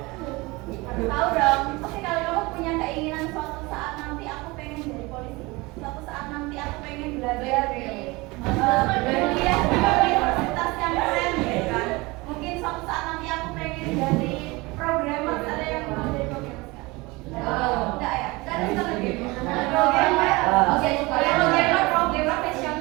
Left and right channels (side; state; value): left; quieter; 23.5 dB